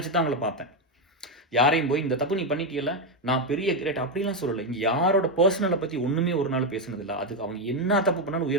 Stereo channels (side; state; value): both; normal; correlation 0.07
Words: தான் அவங்கள பார்த்தேன். யாரையும் போய் இந்த தப்பு நீ பண்ணிட்டீயல்ல, நான் பெரிய கிரேட் அப்படிலாம் சொல்லல. இங்க யாரோட பெர்சனல பத்தி ஒண்ணுமே ஒரு நாள் பேசுனதில்ல. அதுக்கு அவங்க என்ன தப்பு பண்ணாலும்